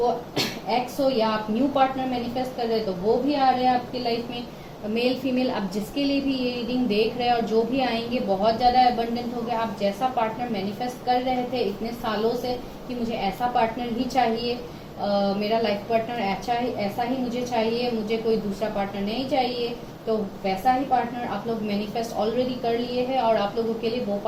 एक्स हो या आप न्यू पार्टनर मैनिफेस्ट कर रहे हैं, तो वो भी आ रहे हैं आपकी लाइफ में, मेल फीमेल, आप जिसके लिए भी ये रीडिंग देख रहे हैं, और जो भी आएंगे बहुत ज्यादा अबंडेंट हो गया। आप जैसा पार्टनर मैनिफेस्ट कर रहे थे इतने सालों से कि मुझे ऐसा पार्टनर ही चाहिए, मेरा लाइफ पार्टनर ऐसा ही मुझे चाहिए, मुझे कोई दूसरा पार्टनर नहीं चाहिए, तो वैसा ही पार्टनर आप लोग मैनिफेस्ट ऑलरेडी कर लिए हैं, और आप लोगों के लिए वो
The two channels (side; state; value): both; identical; correlation 1.00